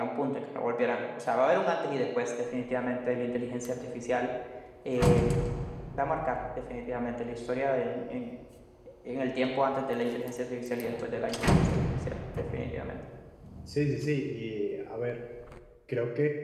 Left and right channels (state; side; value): identical; both; correlation 1.00